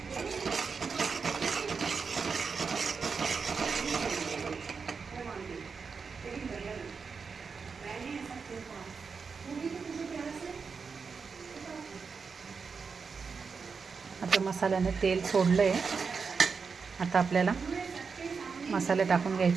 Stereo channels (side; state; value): left; quieter; 5.3 dB